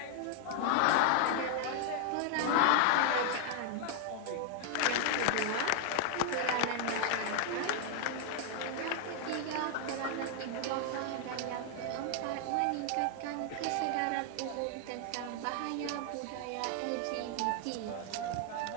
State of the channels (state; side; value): different; both; correlation 0.00